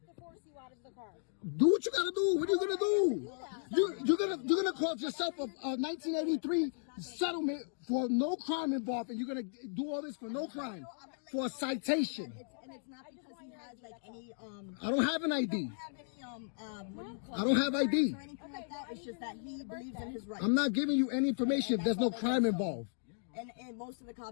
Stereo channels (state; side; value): silent; right; digital silence